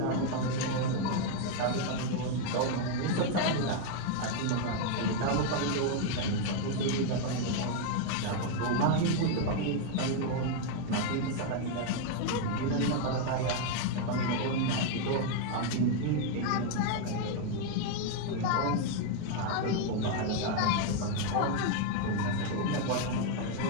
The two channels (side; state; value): both; different; correlation 0.01